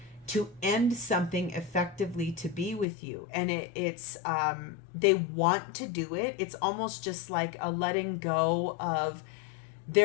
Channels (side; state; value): right; drops out; at 2.9 s